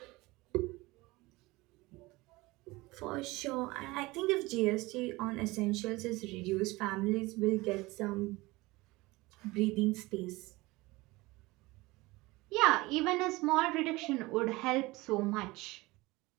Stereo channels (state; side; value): quieter; left; 21.5 dB